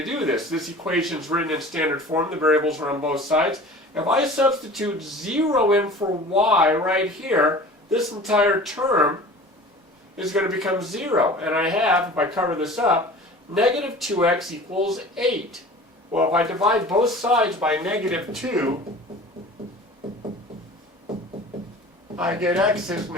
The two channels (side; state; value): both; normal; correlation 0.41